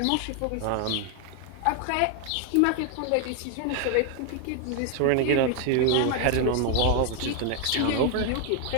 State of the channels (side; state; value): both; different; correlation 0.00